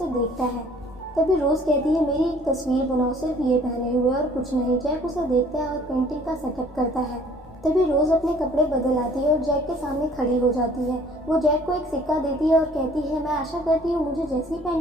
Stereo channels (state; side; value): normal; both; correlation 0.55